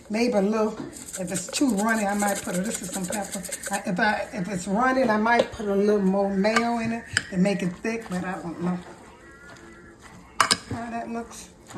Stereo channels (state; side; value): identical; both; correlation 1.00